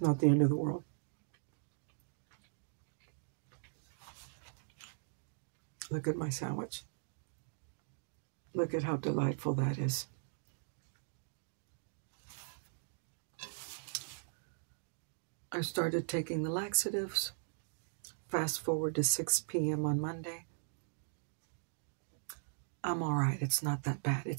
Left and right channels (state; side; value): silent; left; digital silence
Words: not the end of the world. Look at my sandwich. Look at how delightful that is. I started taking the laxatives. Fast forward to 6 p.m. on Monday. I'm all right. It's not that bad.